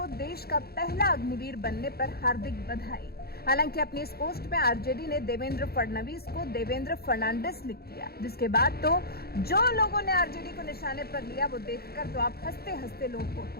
देश का पहला अग्निवीर बनने पर हार्दिक बधाई। हालांकि अपनी इस पोस्ट में आरजेडी ने देवेंद्र फडणवीस को देवेंद्र फर्नांडिस लिख दिया, जिसके बाद तो जो लोगों ने आरजेडी को निशाने पर लिया वो देखकर तो आप हंसते हंसते लोटपोट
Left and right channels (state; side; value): late; right; 0.45 ms